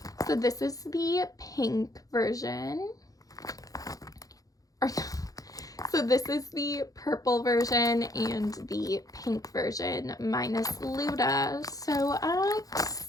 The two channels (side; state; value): right; late; 0.17 ms